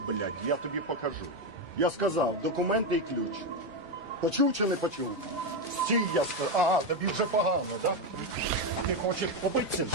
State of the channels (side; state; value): both; normal; correlation 0.09